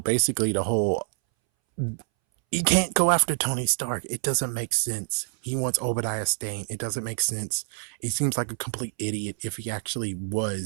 the whole, you can't go after Tony Stark. It doesn't make sense. He wants Obadiah Stane. It doesn't make sense. He seems like a complete idiot if he actually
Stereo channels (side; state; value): left; silent; 60 dB below the other